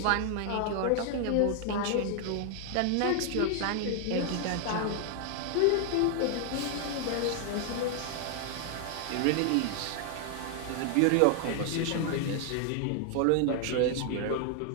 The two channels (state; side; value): different; both; correlation 0.00